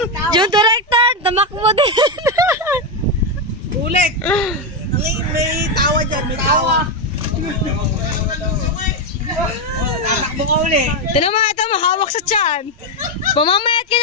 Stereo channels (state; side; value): normal; both; correlation 0.06